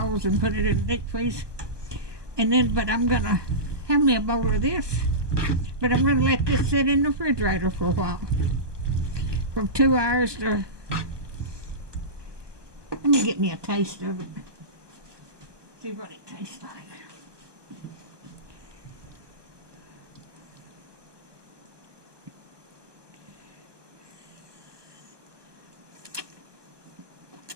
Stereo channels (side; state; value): left; late; 1.2 ms